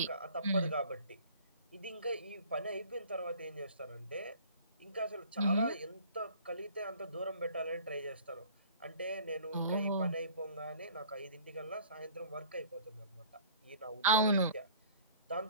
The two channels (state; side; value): inverted; both; correlation -0.50